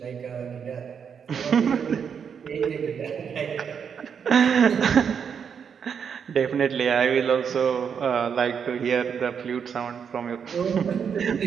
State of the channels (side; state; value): left; quieter; 7.1 dB